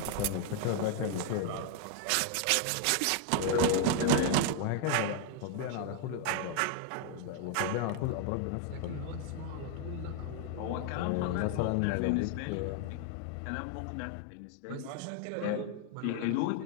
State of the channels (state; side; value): different; both; correlation 0.00